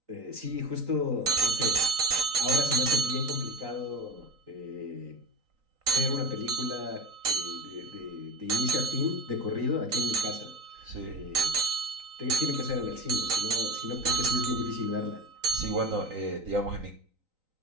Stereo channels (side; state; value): left; late; 3.9 ms